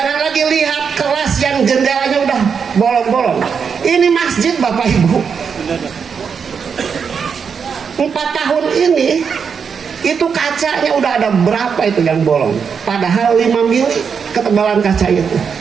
lagi lihat kelas yang jendelanya udah bolong-bolong. Ini masjid Bapak Ibu, 4 tahun ini itu kacanya udah ada berapa itu yang bolong, padahal 5 mili ketebalan kaca itu.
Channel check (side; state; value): left; quieter; 6.4 dB